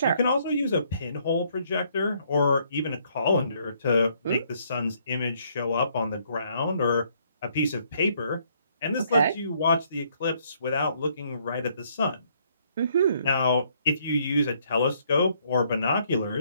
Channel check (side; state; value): both; inverted; correlation -0.68